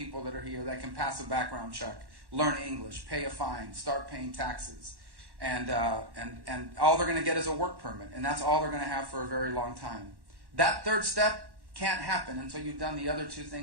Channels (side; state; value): left; late; 1.1 ms